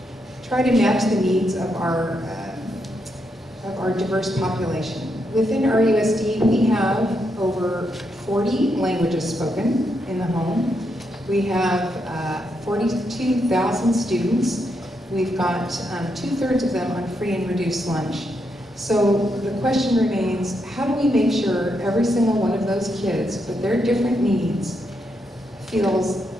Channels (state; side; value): normal; both; correlation 0.81